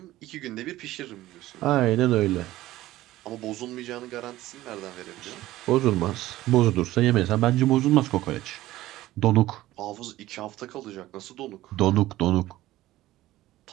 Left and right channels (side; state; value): left; quieter; 16.0 dB